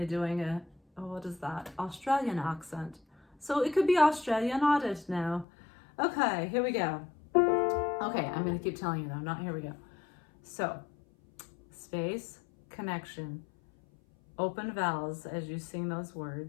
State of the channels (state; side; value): drops out; right; at 5.5 s